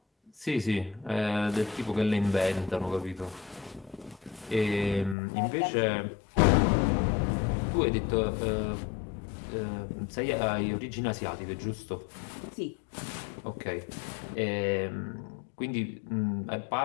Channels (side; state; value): right; drops out; at 5.2 s